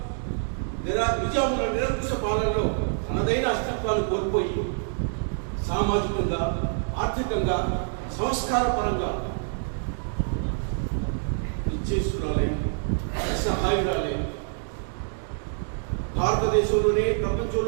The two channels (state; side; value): silent; left; digital silence